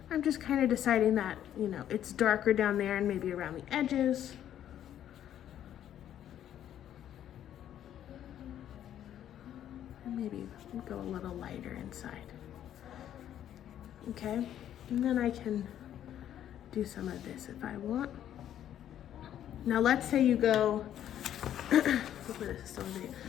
I'm just kind of deciding that, you know, it's darker down there and maybe around the edges. And maybe go a little lighter inside. Okay, and then I can do some of this if I want. Now let's say you go, hopefully this is still in video.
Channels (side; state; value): right; quieter; 10.8 dB